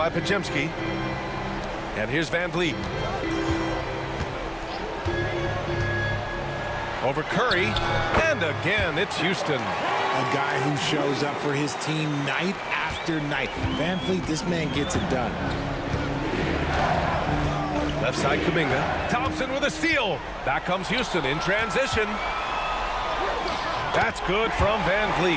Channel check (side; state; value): both; identical; correlation 1.00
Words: Podziemski. And here's Van Vliet. Over Curry. And again, it's Houston. A guy who shows up for his team night after after night. Van Fleet, this man gets it done. Left side Kuminga. Thompson with a steal. Back comes Houston in transition. That's good from Van Vliet.